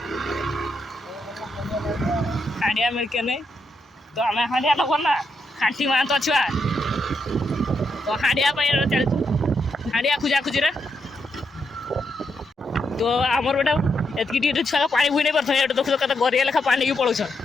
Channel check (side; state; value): both; normal; correlation 0.81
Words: हांडिया मिल के नहीं तो हमें हांडिया लगो ना खांटी मान तो छुआ तो हांडिया पे चल तू हांडिया खुजा खुजी रे तो आमर बेटा एतकी टी छुआ पानी बुई नहीं परथो एटा देखो कत गरिया लेखा पानी की पळुछ